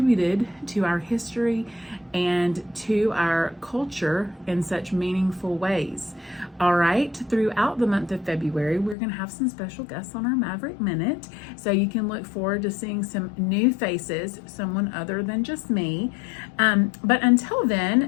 to our history and to our culture in such meaningful ways. All right, throughout the month of February, we're going to have some special guests on our Maverick Minute, so you can look forward to seeing some new faces, someone other than just me. But until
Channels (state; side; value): drops out; right; at 9.0 s